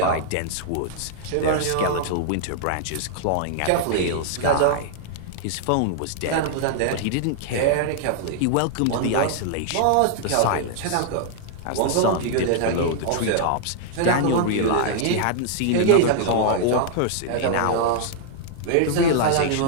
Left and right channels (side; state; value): both; different; correlation -0.01